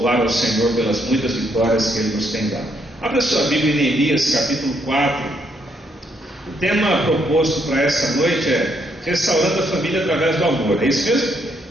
ao Senhor pelas muitas vitórias que Ele nos tem dado. Abra sua Bíblia em Neemias capítulo 4. O tema proposto para essa noite é restaurando a família através do amor. É isso mesmo?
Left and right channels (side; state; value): both; normal; correlation 0.74